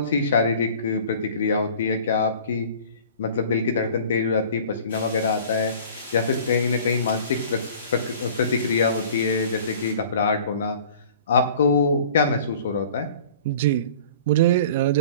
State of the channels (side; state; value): both; inverted; correlation -0.45